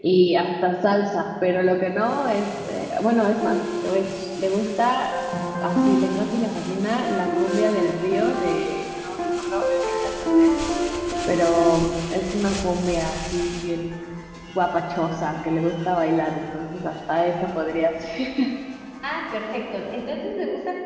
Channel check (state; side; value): identical; both; correlation 1.00